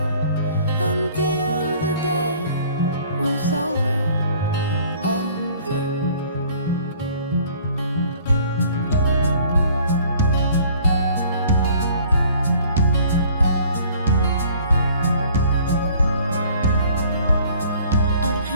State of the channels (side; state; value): both; inverted; correlation -0.54